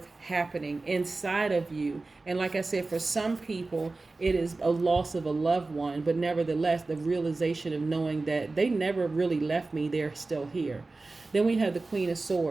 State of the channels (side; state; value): left; quieter; 3.4 dB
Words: happening inside of you. And like I said, for some people, it is a loss of a loved one, but nevertheless, the realization of knowing that they never really left me, they're still here. Then we have the Queen of